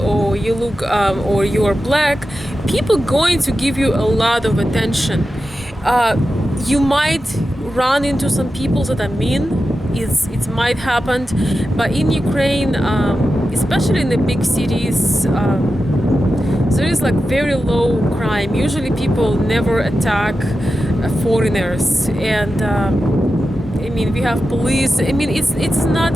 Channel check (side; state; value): both; normal; correlation 0.91